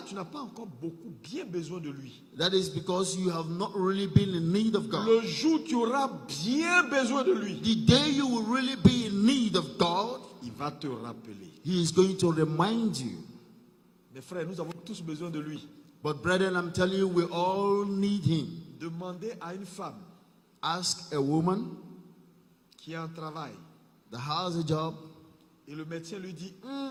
tu n'as pas encore beaucoup bien besoin de lui. That is because you have not really been in need of God. Le jour où tu auras bien besoin de lui, The day you will really be in need of God, il va te rappeler. He is going to remind you. Mes frères, nous avons tous besoin de lui. But brethren, I'm telling you, we all need Him. Demandez à une femme Ask a woman qui a un travail that has a job, et le médecin lui dit,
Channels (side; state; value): both; identical; correlation 1.00